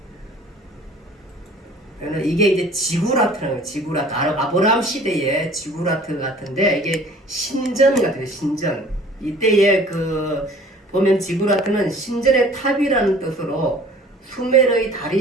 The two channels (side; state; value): both; normal; correlation 0.50